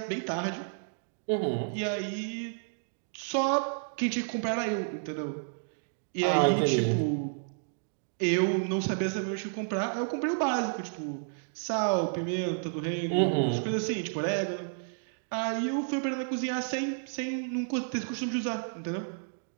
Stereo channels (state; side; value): silent; left; digital silence